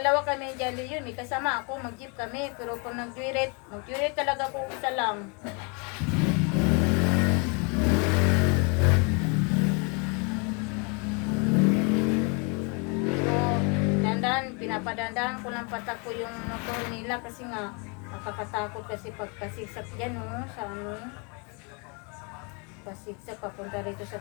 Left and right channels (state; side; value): quieter; right; 33.8 dB